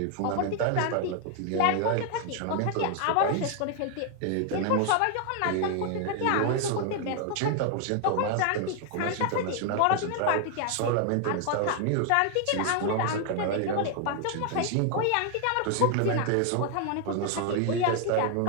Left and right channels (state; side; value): different; both; correlation 0.00